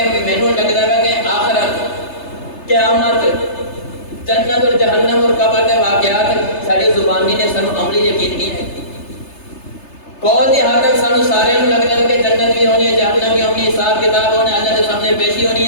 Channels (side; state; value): right; late; 3.3 ms